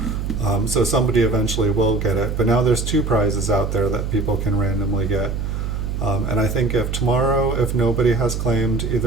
So somebody eventually will get it, but now there's 2 prizes out there that people can randomly get. And I think if tomorrow, if nobody has claimed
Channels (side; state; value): right; noise; hum, 3 dB below the sound